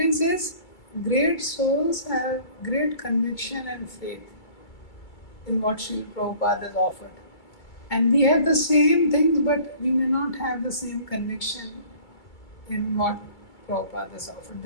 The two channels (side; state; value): right; late; 2.3 ms